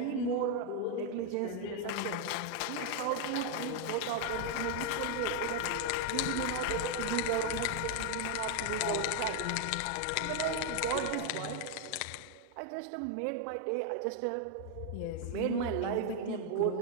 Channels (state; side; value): different; both; correlation 0.01